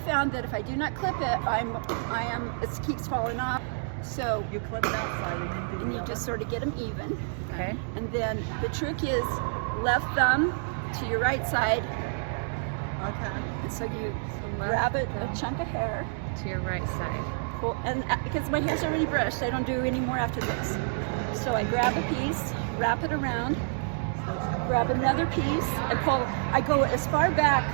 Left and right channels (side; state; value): left; silent; digital silence